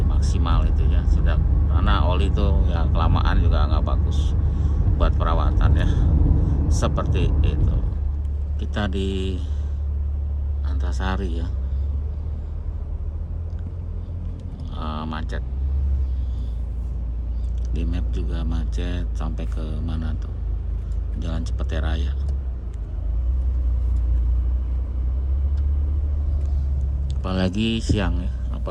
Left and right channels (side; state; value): both; identical; correlation 1.00